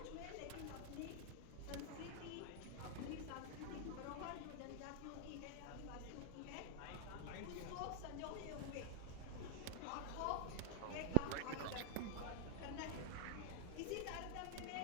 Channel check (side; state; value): both; different; correlation 0.00